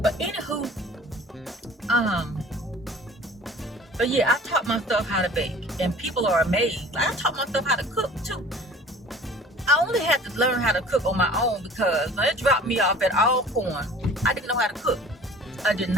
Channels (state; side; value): normal; both; correlation 0.46